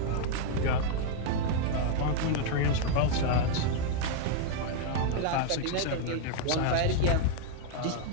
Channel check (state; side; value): different; both; correlation 0.00